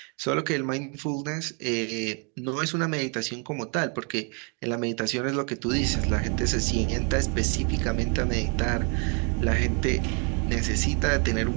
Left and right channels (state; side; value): quieter; left; 37.0 dB